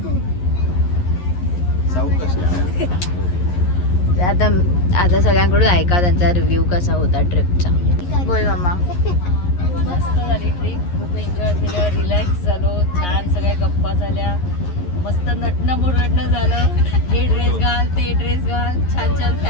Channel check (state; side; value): late; right; 11 ms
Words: आता आता सगळ्यांकडून ऐका त्यांचा रिव्ह्यू कसा होता ट्रिपचा. बोल मम्मा. मस्त झाली ट्रिप. खूप एन्जॉय केलं. रिलॅक्स झालो. छान सगळ्या गप्पा झाल्या. मस्त नटणं मुरडणं झालं. हे ड्रेस घाल ते ड्रेस घाल. छान छान